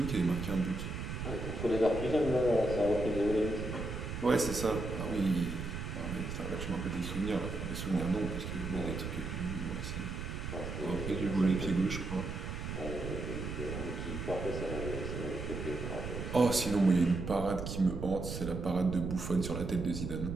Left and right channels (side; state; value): right; noise; rumble, 5 dB below the sound